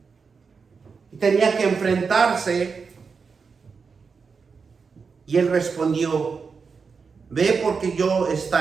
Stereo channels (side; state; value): left; quieter; 5.3 dB